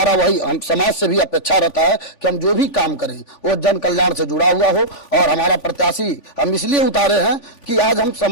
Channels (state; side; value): late; right; 3.5 ms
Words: वही हम समाज से भी अपेक्षा रहता है कि हम जो भी काम करें वो जन कल्याण से जुड़ा हुआ हो। और हमारा प्रत्याशी हम इसलिए उतारे हैं कि आज हम